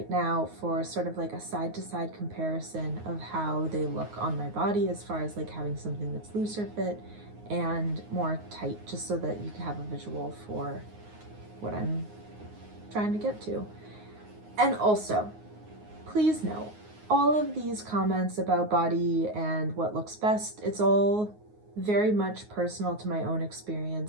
now, for sort of like a side-to-side comparison of how they look on my body as far as like having something that's looser fit and more tight, just so that you can have a visual for what I'm trying to get to. And also, please note, all of these comments about body and what looks best, it's all very much personal to my own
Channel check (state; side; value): late; left; 9.5 ms